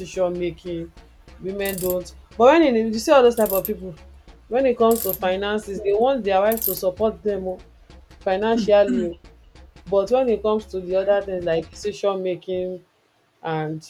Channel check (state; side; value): identical; both; correlation 1.00